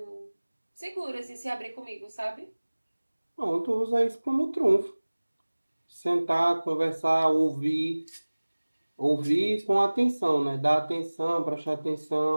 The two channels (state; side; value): inverted; both; correlation -1.00